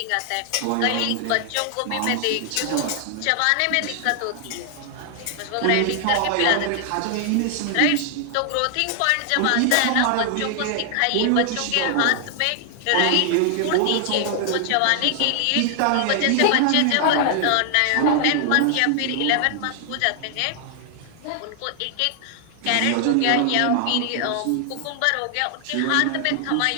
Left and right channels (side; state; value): both; different; correlation 0.00